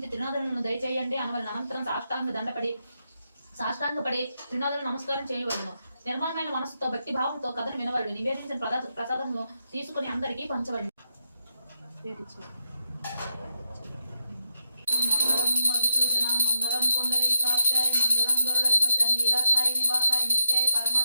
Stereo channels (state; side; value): inverted; both; correlation -0.82